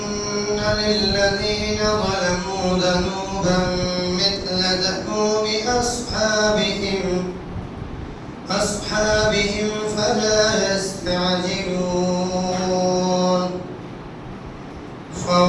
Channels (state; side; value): identical; both; correlation 1.00